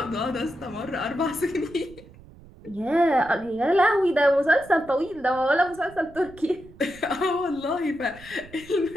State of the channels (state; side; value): noise; right; rumble, 21 dB below the sound